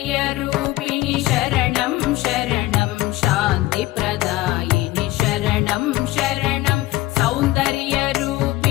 शरणं शरणं शान्तिप्रदायिनि शरणं शरणं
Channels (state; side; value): quieter; right; 17.9 dB